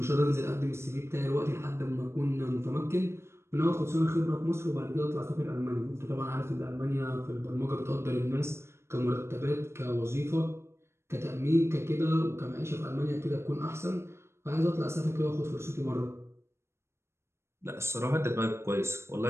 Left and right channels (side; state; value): left; late; 0.13 ms